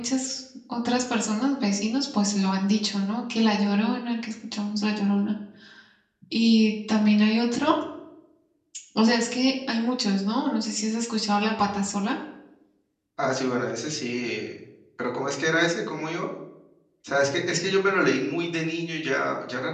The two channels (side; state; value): both; identical; correlation 1.00